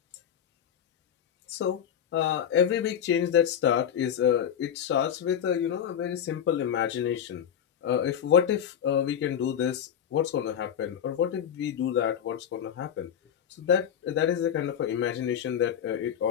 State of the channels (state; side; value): quieter; right; 8.9 dB